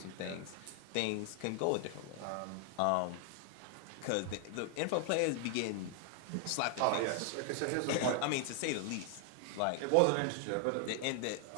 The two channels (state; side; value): different; both; correlation 0.00